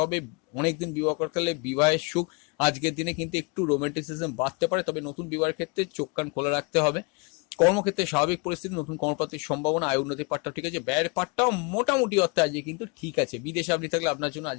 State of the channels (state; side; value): quieter; right; 30.8 dB